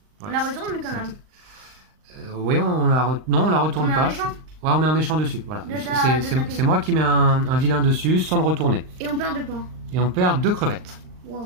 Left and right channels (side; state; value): left; late; 39 ms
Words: On Ouais, la retourne quand c'est même. oui, non, on la retourne On met un pas. méchant. Ouais, on met un méchant dessus. Voilà. De ta- C'est- de C'est ta c'est moi qui mets un vilain dessus sans le retourner. Et on perd 2 points. Et on perd 2 crevettes.